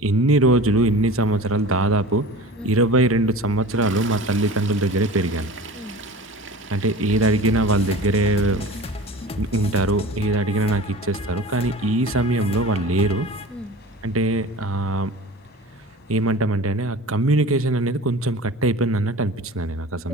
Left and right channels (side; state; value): both; normal; correlation 0.37